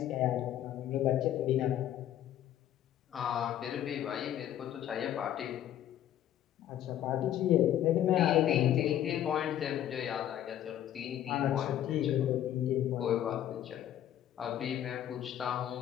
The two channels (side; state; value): right; quieter; 11.4 dB